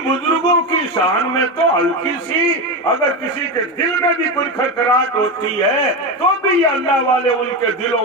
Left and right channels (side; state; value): both; normal; correlation 0.16